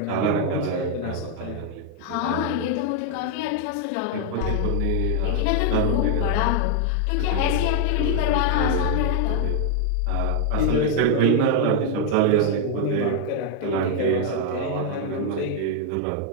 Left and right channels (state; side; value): different; both; correlation 0.00